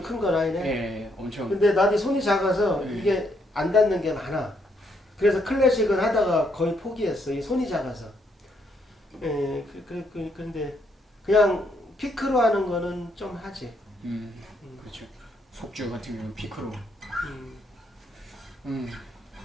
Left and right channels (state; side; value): normal; both; correlation 0.74